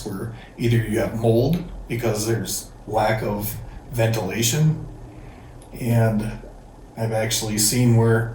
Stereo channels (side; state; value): both; identical; correlation 1.00